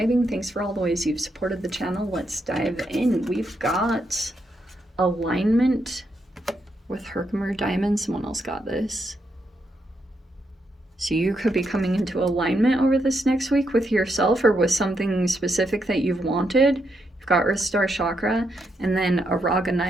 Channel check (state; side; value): normal; both; correlation 0.80